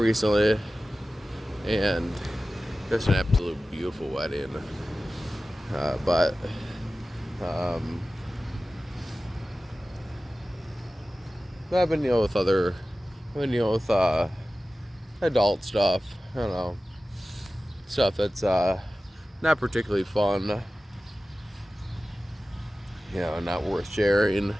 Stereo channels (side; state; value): both; normal; correlation 0.96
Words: and just an absolute beautiful wedding. But I've been with with adult stuff. I don't know, stuff that's not particularly fun. Not worth sharing.